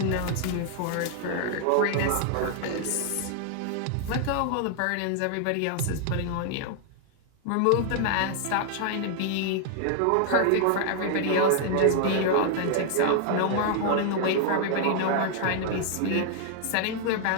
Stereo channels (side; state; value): both; different; correlation 0.00